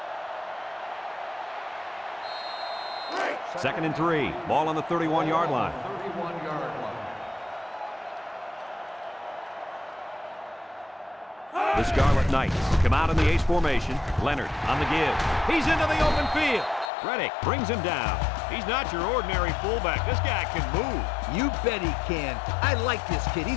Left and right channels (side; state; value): right; drops out; at 16.9 s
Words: Second and 3. Ball on the 31-yard line. The Scarlet Knights come out in the ace formation. Leonard on the give. He's into the open field. Reddick brings him down. He's not your ordinary fullback. This guy can move. You bet he can. I like this kid.